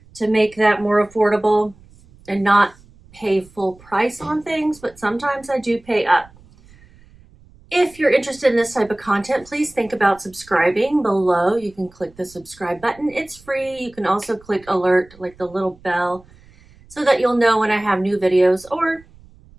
to make that more affordable and not pay full price on things, but sometimes I do pay up. If you're interested in this type of content, please think about subscribing below. You can click the subscribe button. It's free. You can also click alert, like the little bell, so that you'll know when I have new videos, or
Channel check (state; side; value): noise; right; rumble, 26 dB below the sound